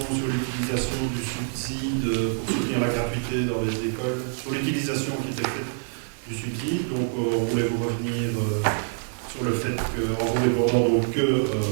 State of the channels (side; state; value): left; silent; digital silence